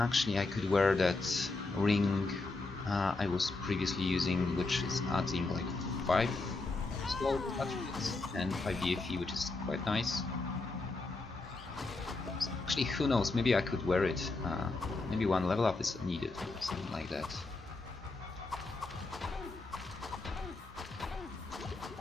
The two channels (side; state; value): right; quieter; 3.4 dB